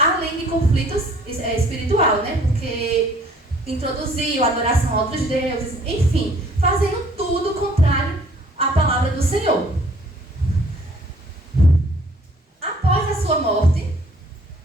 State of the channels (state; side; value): normal; both; correlation 0.57